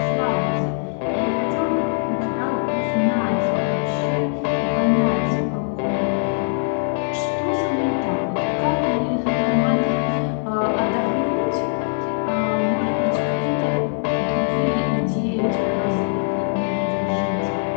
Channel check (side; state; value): right; silent; 61 dB below the other